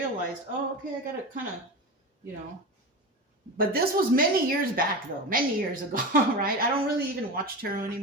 oh, okay, I got to kind of, But this was many years back, though. Many years ago, right? I don't really even watch tarot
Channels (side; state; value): both; normal; correlation 0.25